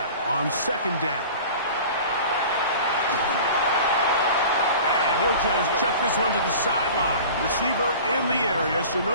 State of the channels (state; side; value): inverted; both; correlation -0.40